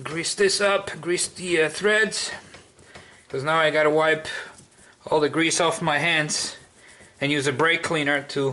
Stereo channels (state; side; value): identical; both; correlation 1.00